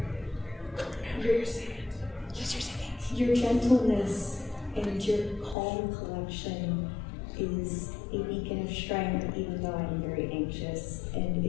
You're second. Use your second. Your gentleness and your calm collection is a beacon of strength, even though I'm very anxious, and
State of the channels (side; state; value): right; drops out; at 5.6 s